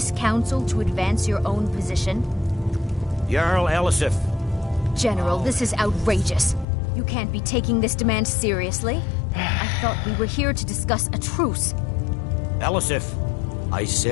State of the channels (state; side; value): drops out; right; at 6.7 s